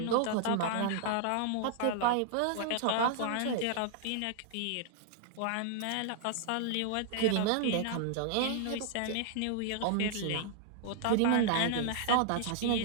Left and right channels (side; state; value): both; different; correlation 0.00